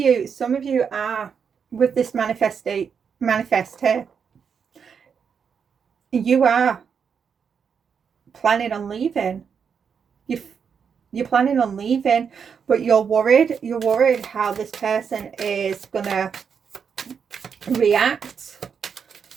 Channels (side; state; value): left; quieter; 6.7 dB